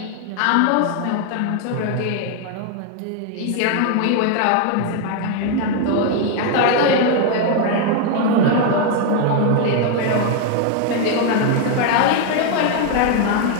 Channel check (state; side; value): different; both; correlation 0.01